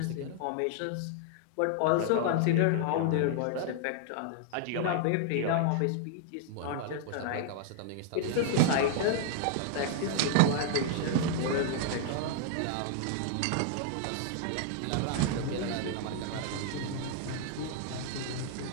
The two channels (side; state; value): both; different; correlation 0.00